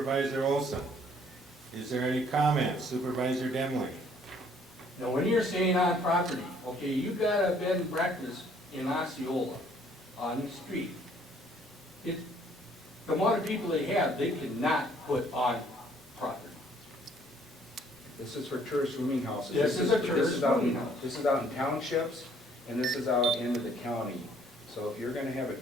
Olson? Is there any comments? Supervisor Demling? Now, when you're saying on property, okay, you got a bed and breakfast in Osceola on the street. The amount of people they have, they cannot put on property. This is for tourist rooming houses. This is a tourist rooming house. This is out in townships, and this is out into the county. So if you're gonna have a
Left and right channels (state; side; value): normal; both; correlation 0.61